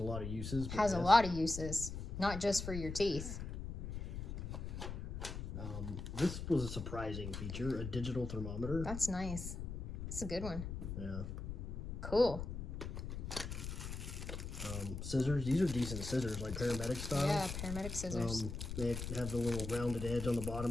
lot of uses. Has a lot of uses. Not just for your teeth. This was a surprising feature. A digital thermometer. That's nice. It's a good one. Yeah. Cool. Scissors. These are decent scissors, like paramedic style. Yeah, paramedic scissors. They have the little rounded edge on the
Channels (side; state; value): left; noise; rumble, 6 dB below the sound